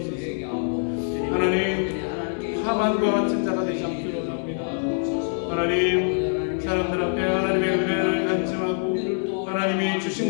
하나님, 하만과 같은 자가 되지 않기를 원합니다. 하나님, 사람들 앞에 하나님의 은혜를 간증하고 하나님이 주신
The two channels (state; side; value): silent; right; 62 dB below the other